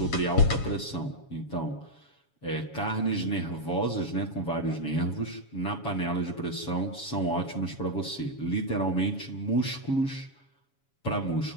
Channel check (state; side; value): late; right; 7.2 ms